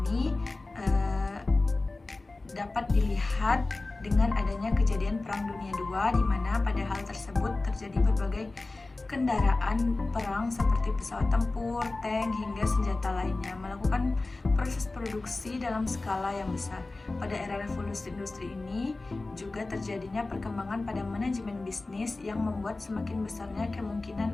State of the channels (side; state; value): right; quieter; 3.3 dB